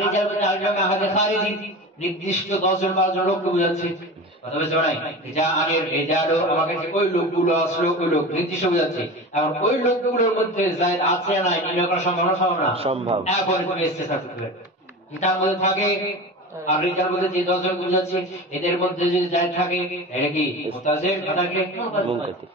রিজাল বলতে আরেকটা আহাদে খারিজি, নির্দিষ্ট 10 জন 12 জন লোককে বোঝাচ্ছে। কথা বুঝতে পারো নাই? জানি রিজালু, আমার কাছে ওই লোকগুলো আসলো, ওই লোক নির্দিষ্ট বোঝাচ্ছে। এখন ওই লোকগুলোর মধ্যে যায়েদ আছে না নির্ণয় করা সম্ভব না? সম্ভব না, সম্ভব। এখন তুমি ইস্তিসনা করতে পারবে, তার মধ্যে থাকে আর রিজাল বলতে যে 10 জন বুঝাচ্ছে, এদের মধ্যে যদি যায়েদ থাকে এটা কি মুত্তাসিল, কথাকে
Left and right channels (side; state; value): both; normal; correlation 0.31